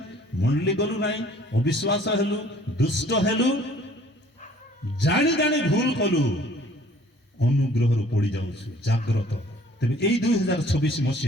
मुंडली गलु नाही अविश्वास हेलु दुष्ट हेलु जानी जानी भूल कलु अनुग्रहरु पड़ी जाउछु जागृत तबे एई 2026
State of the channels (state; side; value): normal; both; correlation 0.55